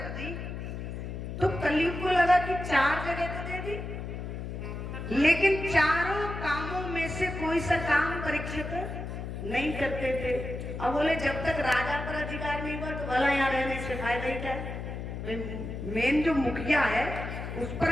दी तो कलयुग को लगा कि 4 जगह तो दे दी, लेकिन चारों कामों में से कोई सा काम परीक्षित नहीं करते थे। अब बोले जब तक राजा पर अधिकार नहीं हुआ तो भला यहाँ रहने से फायदा ही क्या है? मेन जो मुखिया है उस पर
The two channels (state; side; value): noise; left; hum, 6 dB below the sound